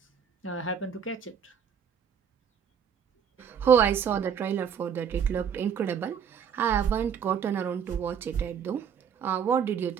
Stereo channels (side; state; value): left; quieter; 7.7 dB